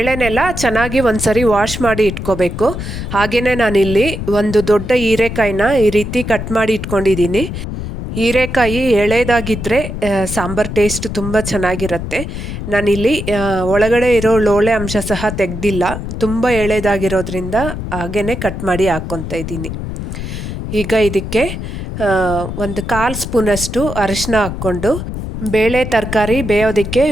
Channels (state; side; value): noise; left; rumble, 6 dB below the sound